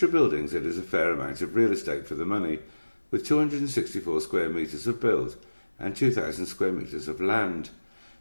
buildings it is a fair amount of real estate for the money, with 264 square metres of build and 2,000 square metres of land.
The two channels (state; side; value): inverted; both; correlation -1.00